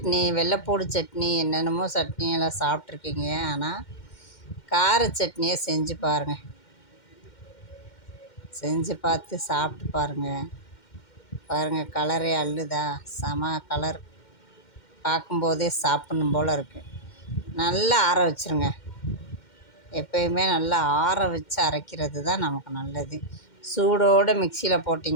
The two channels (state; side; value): late; right; 2.1 ms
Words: வெள்ளைப்பூடு சட்னி, என்னென்னமோ சட்னியெல்லாம் சாப்பிட்ருக்கீங்க. ஆனால் கார சட்னியை செஞ்சு பாருங்கள். செஞ்சு பார்த்து சாப்பிட்டு பாருங்கள். கலரே அள்ளுதா, செம கலர். பார்க்கும்போதே சாப்பிட்ணும் போல் இருக்குது. நல்லா ஆற வச்சுருங்க. எப்பயுமே நல்லா ஆற வச்சு அரைக்கிறது தான் நமக்கு நல்லது. சூடோடு மிக்சியில்